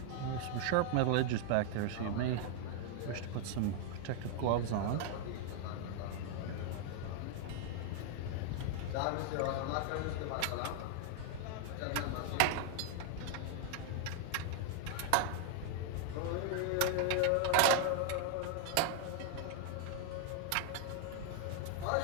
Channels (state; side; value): different; both; correlation 0.00